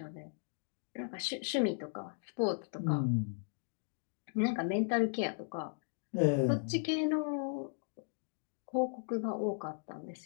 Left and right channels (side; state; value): right; silent; digital silence